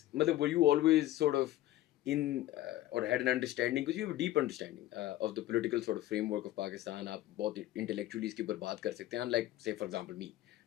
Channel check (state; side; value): quieter; right; 14.8 dB